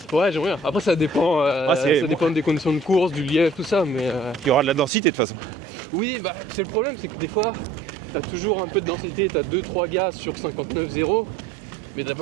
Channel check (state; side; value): drops out; left; at 4.9 s